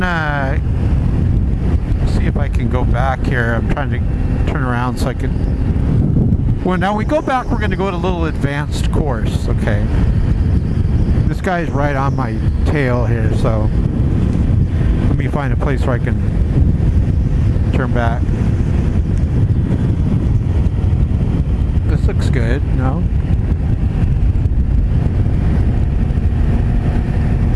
see if I can go back here. I'm trying to turn around so I can. Well, now we go back, we're gonna go to a little advanced course. Okay. This guy's right on my tail here, so let me find a place where I can turn back. This looks good, no?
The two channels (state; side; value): identical; both; correlation 1.00